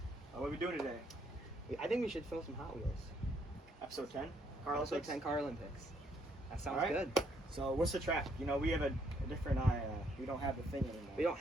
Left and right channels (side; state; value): both; normal; correlation 0.70